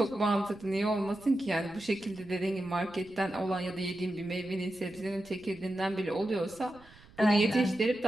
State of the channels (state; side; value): noise; right; rumble, 24 dB below the sound